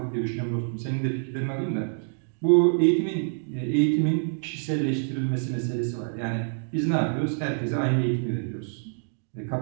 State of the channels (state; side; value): silent; left; digital silence